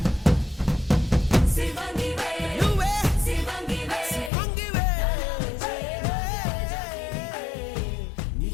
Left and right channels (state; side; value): drops out; right; at 4.3 s